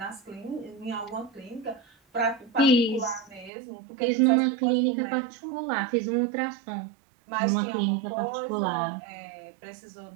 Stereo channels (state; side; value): drops out; left; at 3.5 s